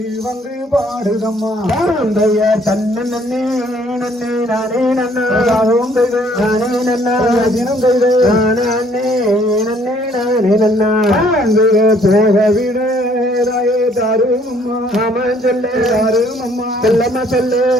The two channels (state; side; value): normal; both; correlation 0.62